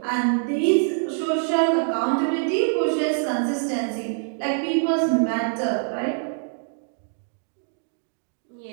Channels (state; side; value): silent; left; digital silence